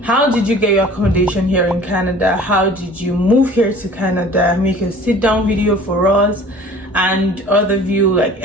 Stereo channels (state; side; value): normal; both; correlation 0.47